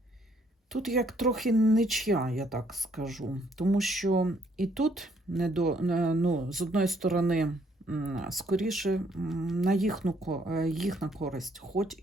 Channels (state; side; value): normal; both; correlation 0.67